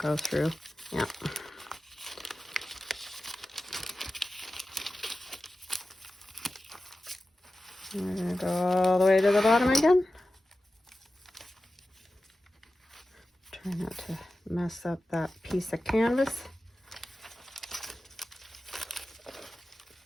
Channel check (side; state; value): both; normal; correlation 0.94